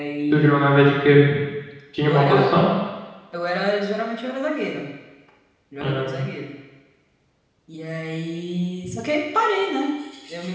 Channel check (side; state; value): both; identical; correlation 1.00